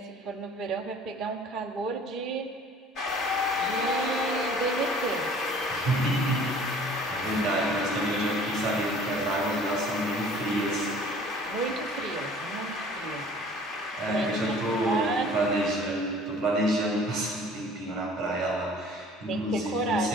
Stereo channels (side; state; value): both; normal; correlation 0.50